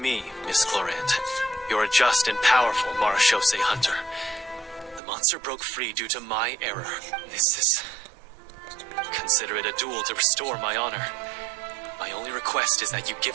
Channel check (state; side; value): drops out; left; at 5.0 s